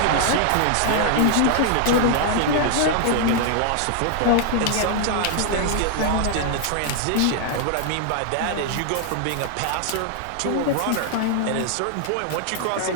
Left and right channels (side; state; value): both; different; correlation 0.00